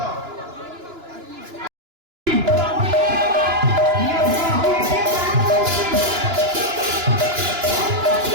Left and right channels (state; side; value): late; left; 2.9 ms